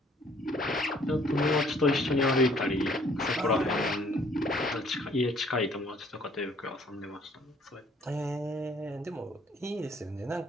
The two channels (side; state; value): both; normal; correlation 0.60